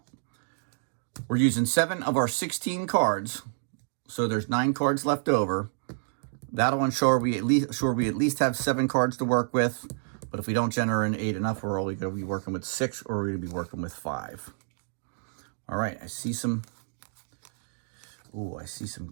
We're using 7 of our 16 cards, so there's 9 cards left over. That'll ensure we at least have 7 cards to work with. But if we don't generate enough, we're only going to be working with 6, or we're going to be working with 5. All right, I see some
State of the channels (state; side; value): silent; left; digital silence